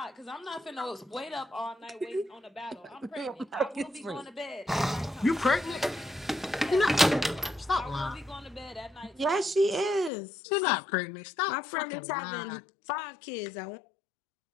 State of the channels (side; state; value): right; drops out; at 10.1 s